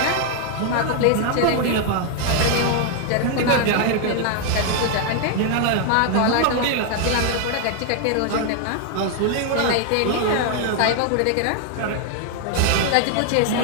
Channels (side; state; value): both; different; correlation 0.00